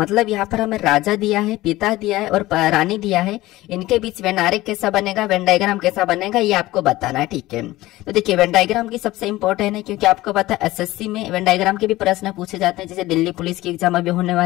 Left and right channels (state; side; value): quieter; right; 17.6 dB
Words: यहाँ पर हमें राजा दिया है, पिता दिया है और रानी दिया है, इनके बीच वेन आरेख कैसा बनेगा, वेन डायग्राम कैसा बनेगा, ये आपको बताना है। ठीक है, तो देखिए वेन डायग्राम की सबसे इंपॉर्टेंट है, क्योंकि आपको पता है एसएससी में वेन डायग्राम के भी प्रश्न पूछे जाते हैं। जैसे दिल्ली पुलिस की एग्जाम अभी होने